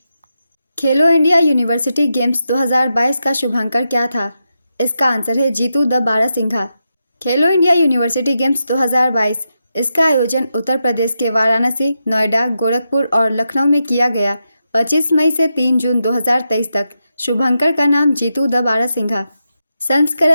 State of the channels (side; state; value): both; inverted; correlation -0.87